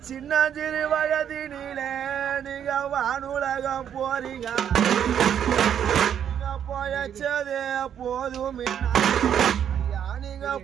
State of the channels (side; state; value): left; quieter; 9.1 dB